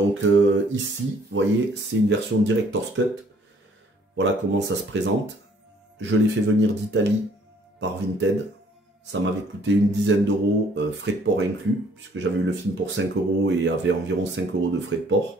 ici, vous voyez, c'est une version Director's Cut. Voilà comment ça se présente. Je l'ai fait venir d'Italie par Vinted. Ça m'avait coûté une dizaine d'euros, frais de port inclus, puisque j'avais eu le film pour 5 € et avait environ 5 € de frais de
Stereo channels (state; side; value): normal; both; correlation 0.60